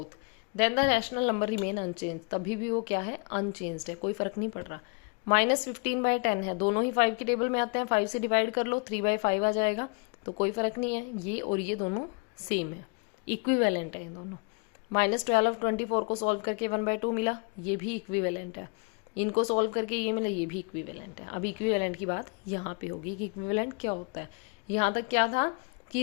then the rational number remain unchanged। तभी भी वो क्या है, unchanged है, कोई फर्क नहीं पड़ रहा। -15/10 है, दोनों ही 5 के टेबल में आते हैं, 5 से डिवाइड कर लो, 3/5 आ जाएगा, तो कोई फर्क नहीं है। ये और ये दोनों सेम है, इक्विवेलेंट है ये दोनों। -12/24 को सॉल्व करके 1/2 मिला, ये भी इक्विवेलेंट है। इनको सॉल्व करके ये मिला, ये भी इक्विवेलेंट है। अब इक्विवेलेंट की बात यहाँ पे होगी कि इक्विवेलेंट क्या होता है। यहाँ तक क्या था कि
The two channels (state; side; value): quieter; right; 32.9 dB